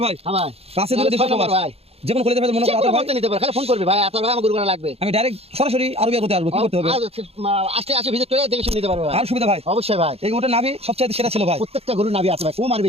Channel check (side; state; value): left; late; 0.29 ms